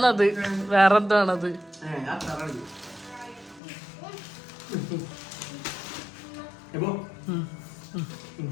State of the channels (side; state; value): right; drops out; at 3.6 s